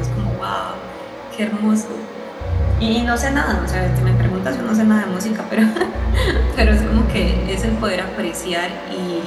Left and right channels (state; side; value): identical; both; correlation 1.00